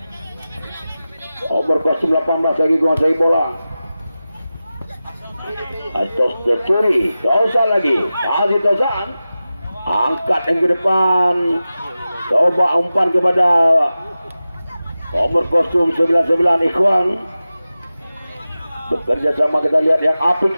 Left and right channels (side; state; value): both; inverted; correlation -0.95